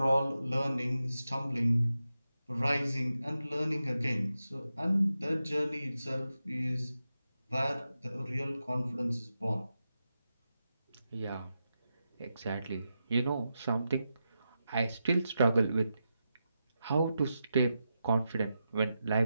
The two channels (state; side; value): inverted; both; correlation -0.89